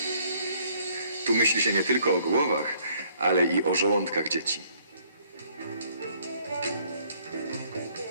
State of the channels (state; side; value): inverted; both; correlation -0.63